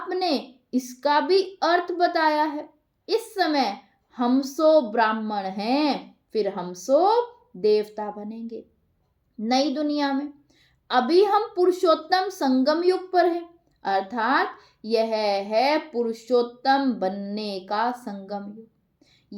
ने इसका भी अर्थ बताया है। इस समय हम सो ब्राह्मण हैं, फिर हम सो देवता बनेंगे नई दुनिया में। अभी हम पुरुषोत्तम संगम युग पर हैं, अर्थात यह है पुरुषोत्तम बनने का संगम युग।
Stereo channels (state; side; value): identical; both; correlation 1.00